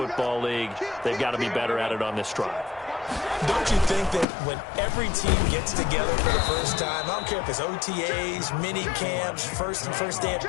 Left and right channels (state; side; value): drops out; right; at 4.2 s